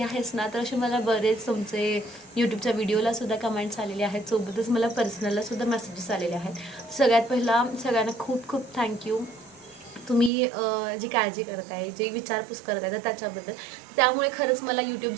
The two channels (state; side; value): drops out; left; at 10.3 s